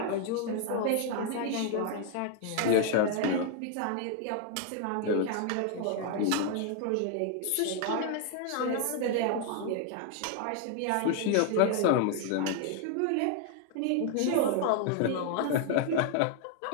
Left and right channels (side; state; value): both; different; correlation 0.00